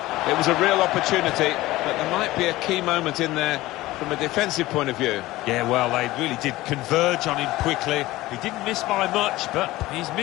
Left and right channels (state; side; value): quieter; right; 17.8 dB